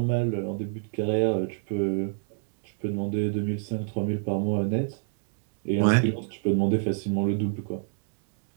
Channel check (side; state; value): left; silent; digital silence